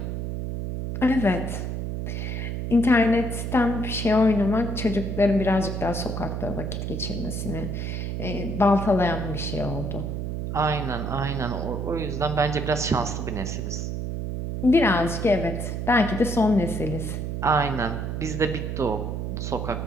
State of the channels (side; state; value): right; noise; hum, 3 dB below the sound